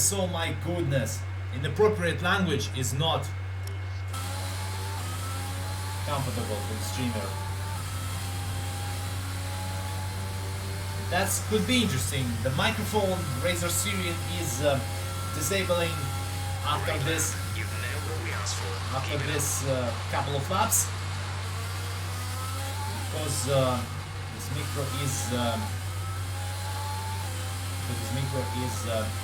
oh my goodness. Inappropriate language is not comfortable for the streamer. That could be interesting. The microphone Razer Syrian is disabling after this couple of laps, because this micro is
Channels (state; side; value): identical; both; correlation 1.00